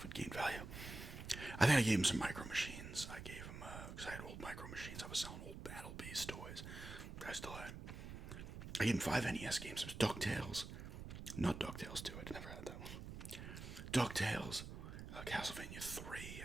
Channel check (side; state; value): right; noise; rumble, 9 dB below the sound